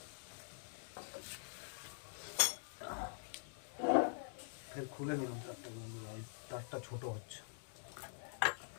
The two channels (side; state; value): right; silent; digital silence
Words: ফের খুলে নিলাম তারটা, বন্ধুরা তারটা ছোটো হচ্ছে।